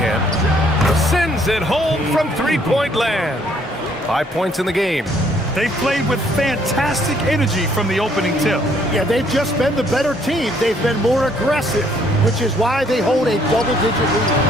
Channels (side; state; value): both; normal; correlation 0.65